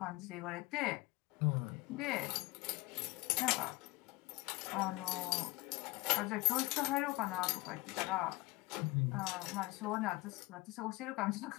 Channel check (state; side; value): quieter; right; 22.4 dB